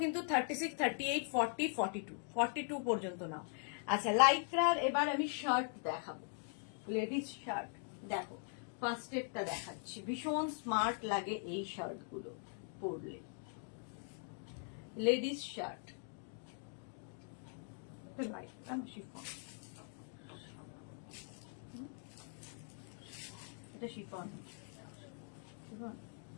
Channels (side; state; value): right; silent; 50 dB below the other